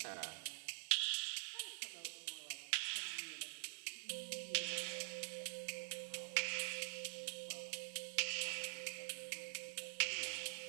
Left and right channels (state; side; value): silent; left; digital silence